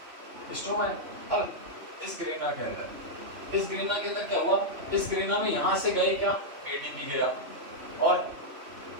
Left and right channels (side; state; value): left; late; 3.0 ms